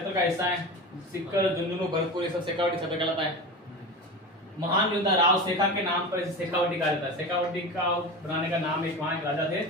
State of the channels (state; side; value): normal; both; correlation 0.27